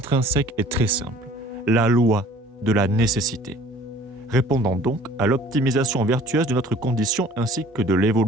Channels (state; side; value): normal; both; correlation 0.50